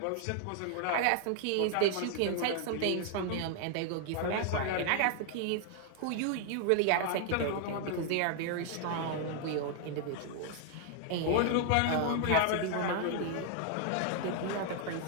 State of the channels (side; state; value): both; different; correlation 0.00